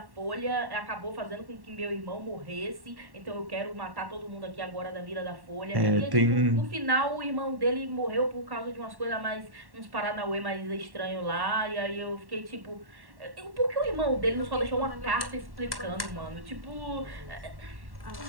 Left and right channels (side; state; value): left; late; 1.1 ms